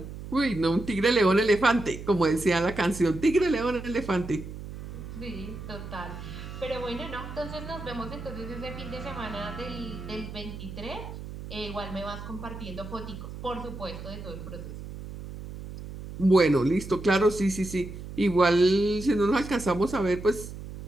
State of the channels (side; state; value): right; noise; hum, 11 dB below the sound